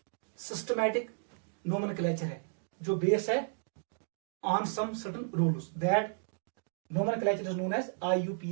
सिस्टमैटिक नोमेनक्लेचर है, जो बेस है on some certain rules, that nomenclature is known as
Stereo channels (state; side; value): silent; left; digital silence